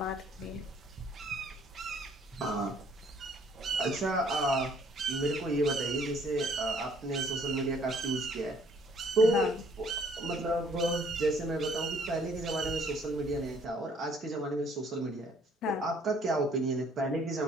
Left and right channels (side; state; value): both; normal; correlation 0.61